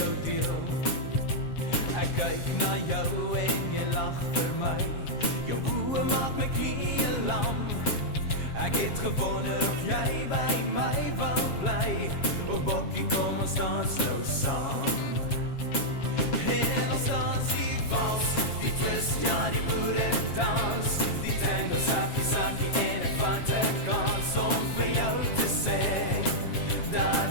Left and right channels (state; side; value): late; right; 7.4 ms